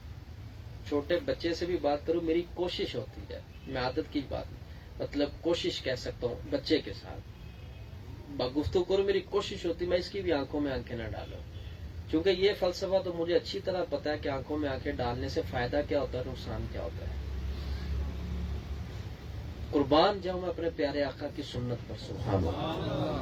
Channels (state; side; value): identical; both; correlation 1.00